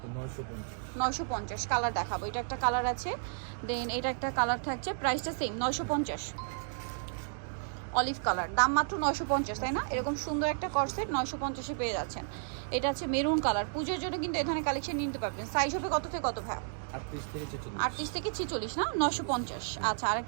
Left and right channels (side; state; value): left; silent; digital silence